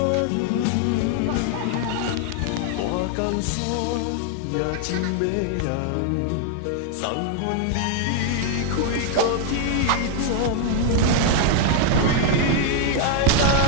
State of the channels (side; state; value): both; different; correlation 0.00